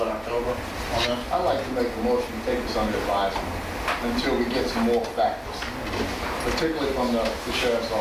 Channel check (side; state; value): both; identical; correlation 1.00